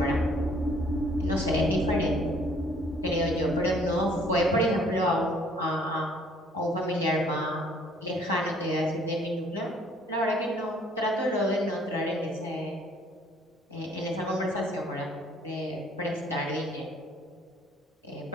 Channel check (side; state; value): both; normal; correlation 0.60